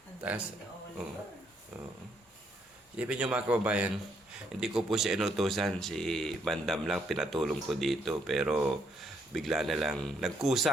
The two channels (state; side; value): normal; both; correlation 0.72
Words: Ang Taas, galing ni oo. Oliver. Oo. Isipin nyo mga kababayan, hindi ko po siya inutusan, si Bandam lang pinatulong ko dito, pero bigla na lang